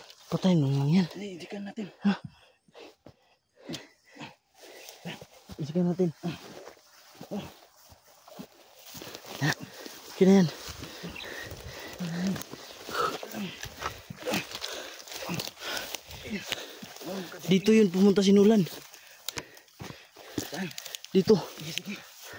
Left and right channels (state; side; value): identical; both; correlation 1.00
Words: Patayin mo lang yan. Inisikan natin. Isikan natin. Okay na yan. Dito yun pumunta si Nulan. Dito. Sige.